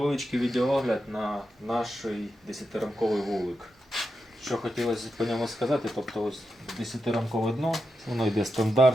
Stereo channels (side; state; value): both; normal; correlation 0.87